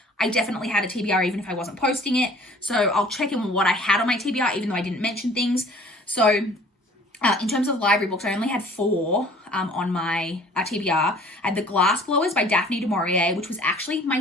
I definitely had a TBR even if I wasn't posting it. So I'll check in on what I had on my TBR, even though I didn't mention things. So in terms of library books, I only had 4 on my TBR. I had The Glass Blowers by Daphne du Maurier, which was actually my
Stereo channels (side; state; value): both; normal; correlation 0.51